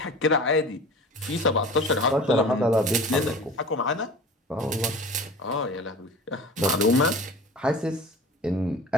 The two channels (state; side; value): normal; both; correlation 0.39